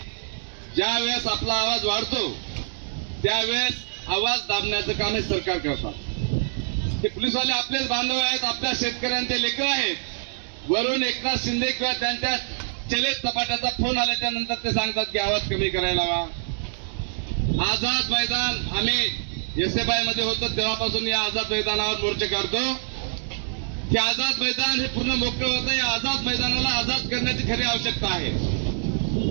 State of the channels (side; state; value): left; silent; digital silence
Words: ज्या वेळेस आपला आवाज वाढतो त्यावेळेस आवाज दाबण्याचं काम हे सरकार करतात. हे पोलीसवाले आपलेच बांधव आहेत, आपल्या शेतकऱ्यांचे लेकर आहेत. वरून एकनाथ शिंदे किंवा त्यांच्या चलित सपाट्याचा फोन आल्याच्या नंतर ते सांगतात की आवाज कमी करायला हवा. आझाद मैदान आम्ही SFI मध्ये होतो तेव्हापासून या आझाद मैदानावर मोर्चे काढतो. हे आझाद मैदान हे पूर्ण मोकळं होतं. या आझाद मैदानाला आझाद करण्याची खरी आवश्यकता आहे.